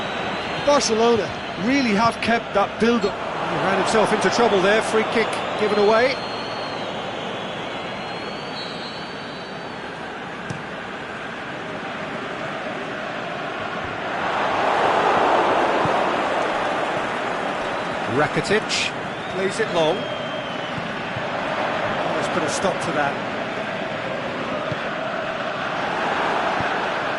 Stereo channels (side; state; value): both; identical; correlation 1.00